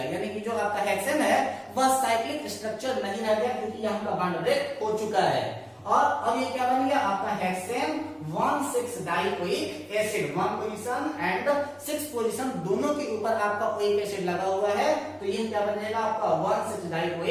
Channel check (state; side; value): identical; both; correlation 1.00